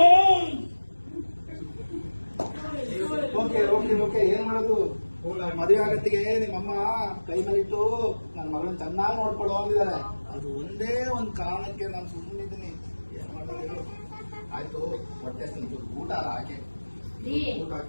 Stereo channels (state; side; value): inverted; both; correlation -1.00